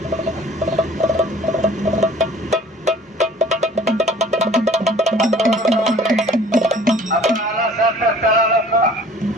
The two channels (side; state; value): both; normal; correlation 0.50